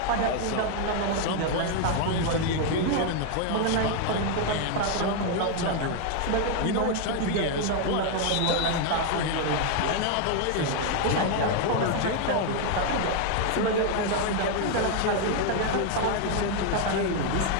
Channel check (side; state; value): both; different; correlation 0.00